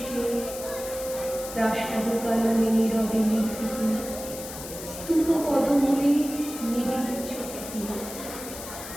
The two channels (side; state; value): left; noise; hiss, 11 dB below the sound